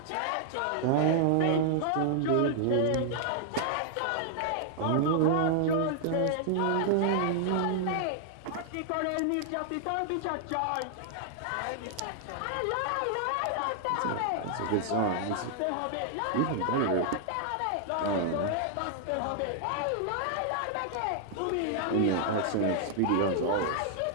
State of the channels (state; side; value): different; both; correlation -0.01